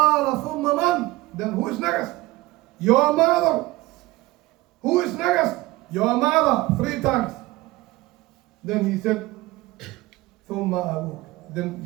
ثم من? Then who is next? Your mother. Who is next? Your mother. 3 times. Then he said, ثم أبوك. Then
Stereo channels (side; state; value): left; quieter; 19.3 dB